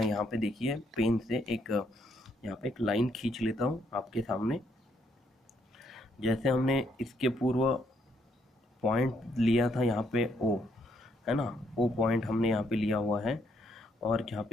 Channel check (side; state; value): both; normal; correlation 0.72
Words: यहाँ पे देखिए पेन से यहाँ पे एक लाइन खींच लेता हूँ आपके सामने। जैसे हमने इसके पूर्व पॉइंट लिया था यहाँ पे O, है ना, O पॉइंट हमने यहाँ पे लिया हुआ है, और जहाँ